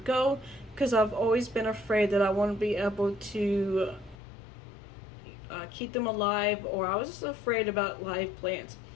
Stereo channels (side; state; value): right; drops out; at 4.2 s